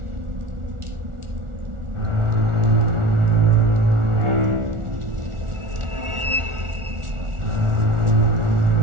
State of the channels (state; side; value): late; left; 1.4 ms